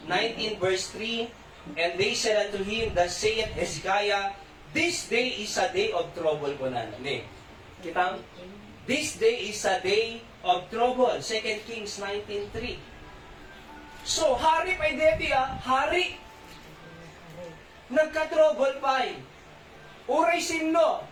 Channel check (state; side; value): identical; both; correlation 1.00